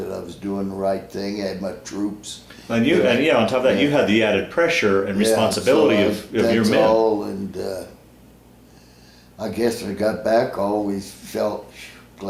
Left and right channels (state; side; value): identical; both; correlation 1.00